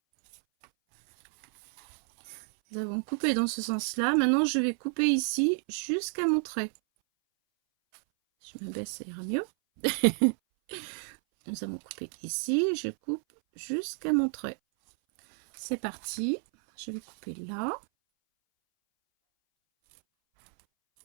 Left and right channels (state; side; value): silent; left; 58 dB below the other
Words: Nous avons coupé dans ce sens-là. Maintenant, je vais couper ici jusqu'à mon trait. Si je me baisse, ça ira mieux. Nous avons coupé ici. Je coupe jusqu'à mon trait. C'est parti. Je vais couper là.